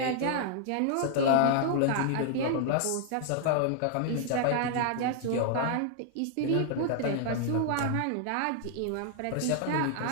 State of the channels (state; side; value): different; both; correlation 0.00